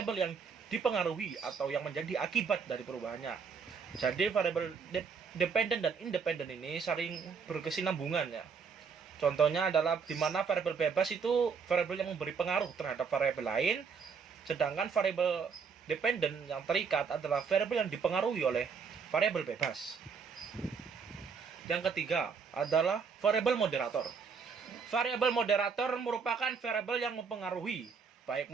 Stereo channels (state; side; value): quieter; left; 5.8 dB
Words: yang dipengaruhi atau yang menjadi akibat dari perubahannya. Jadi variabel dependent dan independent ini saling berkesinambungan ya. Contohnya adalah di mana variabel bebas itu variabel yang memberi pengaruh terhadap variabel lain, sedangkan variabel dependent yang terikat adalah variabel yang dipengaruhi oleh variabel bebas. Yang ketiga adalah variabel moderator. Variabel moderator merupakan variabel yang mempengaruhi, baik